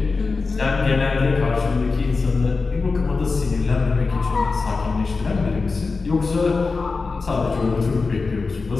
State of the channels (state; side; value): quieter; right; 4.2 dB